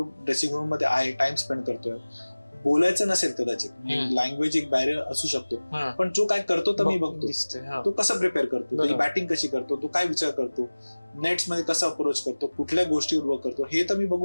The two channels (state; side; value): inverted; both; correlation -1.00